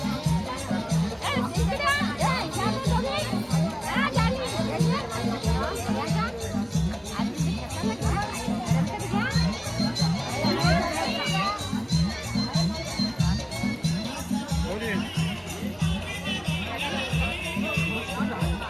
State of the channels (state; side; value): identical; both; correlation 1.00